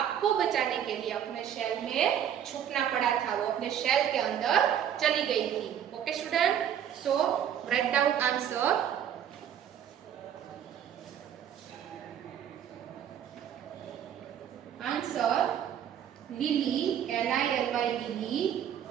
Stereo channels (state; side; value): quieter; left; 9.5 dB